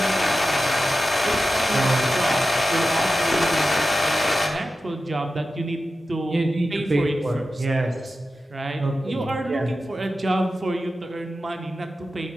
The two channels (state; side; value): normal; both; correlation 0.92